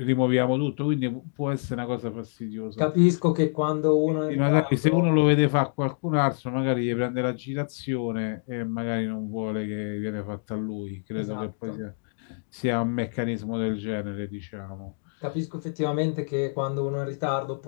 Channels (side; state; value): right; silent; digital silence